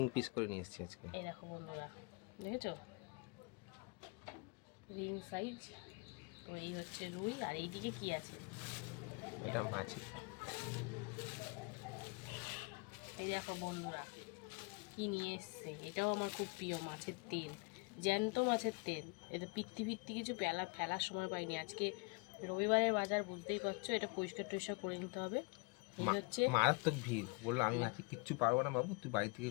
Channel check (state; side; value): quieter; right; 30.2 dB